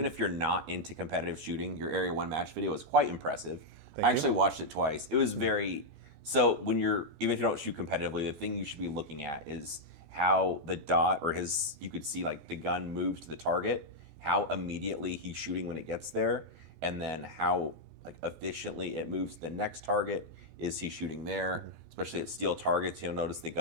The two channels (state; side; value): late; left; 14 ms